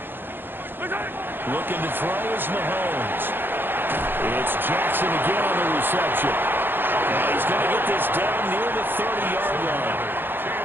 Looking to throw is Mahomes. It's Jackson again on the reception. And he's going to get this down near the 30-yard line.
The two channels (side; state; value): left; late; 0.099 ms